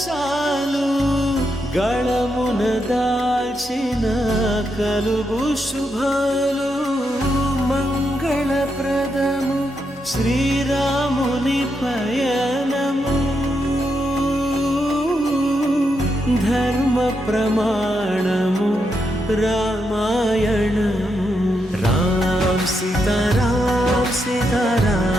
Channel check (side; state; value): both; normal; correlation 0.82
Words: చాలు గళమున దాల్చిన కలుగు శుభాలు మంగళప్రదము శ్రీరాముని పయనము ధర్మ ప్రమాణము రామాయణము రామ్ సీతారామ్